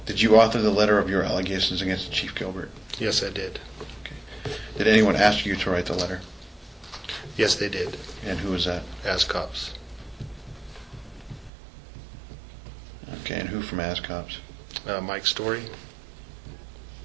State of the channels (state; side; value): drops out; left; at 11.5 s